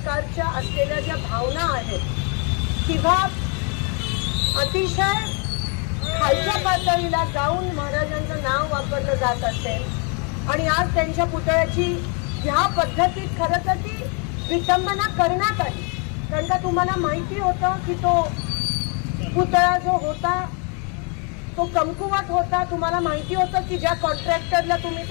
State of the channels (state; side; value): quieter; right; 36.1 dB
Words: असलेल्या ज्या भावना आहेत किंवा अतिशय खालच्या पातळीला जाऊन महाराजांचं नाव वापरलं जात असेल आणि आज त्यांच्या पुतळ्याची ह्या पद्धतीत खरं तर ती विटंबना करण्यात आली. कारण का तुम्हाला माहिती होतं की तो पुतळा जो होता तो कमकुवत होता. तुम्हाला माहिती होतं की ज्या कॉन्ट्रॅक्टरला तुम्ही